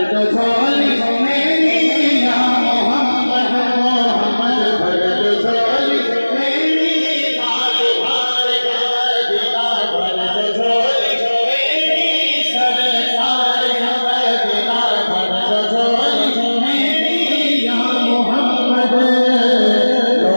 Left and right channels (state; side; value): inverted; both; correlation -1.00